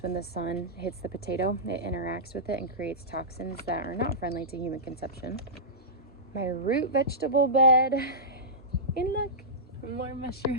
when the sun hits the potato, it interacts with it and creates toxins that are not friendly to human consumption. My root vegetable bed, and look, more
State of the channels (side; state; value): both; normal; correlation -0.16